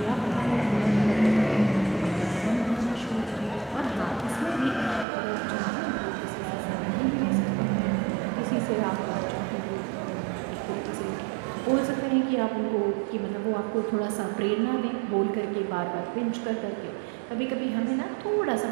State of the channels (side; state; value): left; drops out; at 5.1 s